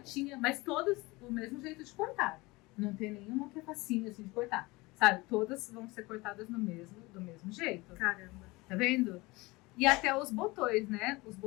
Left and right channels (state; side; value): quieter; right; 22.8 dB